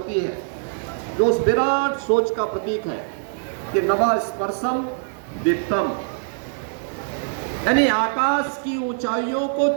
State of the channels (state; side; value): silent; left; digital silence